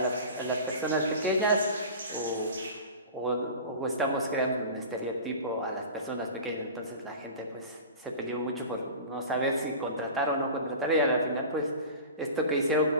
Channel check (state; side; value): inverted; both; correlation -0.35